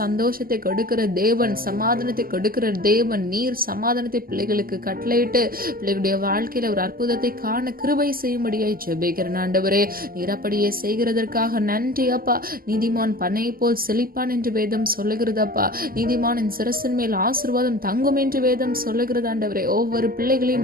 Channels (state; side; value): late; left; 0.42 ms